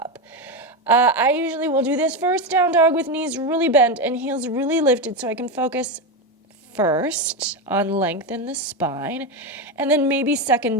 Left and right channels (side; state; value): both; normal; correlation 0.13